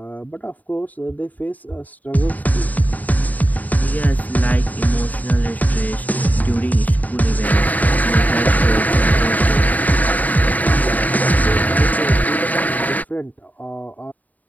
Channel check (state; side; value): late; right; 0.077 ms